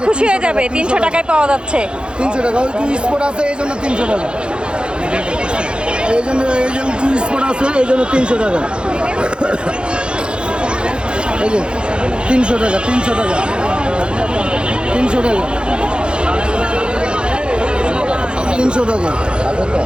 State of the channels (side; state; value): left; late; 0.053 ms